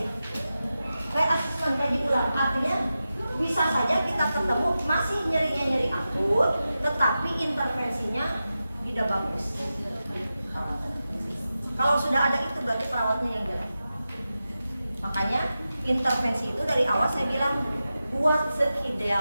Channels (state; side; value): inverted; both; correlation -0.92